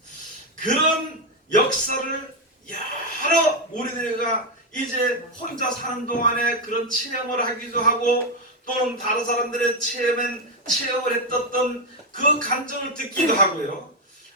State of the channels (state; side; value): normal; both; correlation 0.06